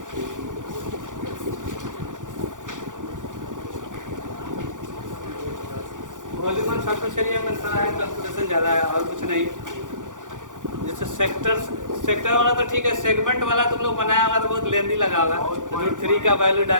वॉल्यूम एंड सरफेस एरिया में सारा है, कैलकुलेशन ज़्यादा है और कुछ नहीं। जैसे सेक्टर वाला तो ठीक है, सेगमेंट वाला तुम लोग बनाया होगा तो बहुत लेंदी लगा होगा। √3 का वैल्यू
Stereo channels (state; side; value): late; left; 0.87 ms